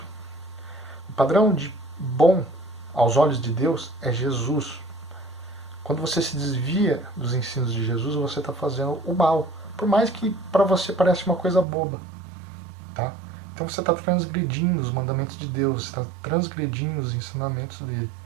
O padrão de bom aos olhos de Deus é Jesus. Quando você se desvia dos ensinos de Jesus, você está fazendo o mal. Por mais que para você pareça uma coisa boba. Tá? Então você está transgredindo os mandamentos de Deus, você está transgredindo os ensinamentos dele.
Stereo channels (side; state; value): left; drops out; at 11.7 s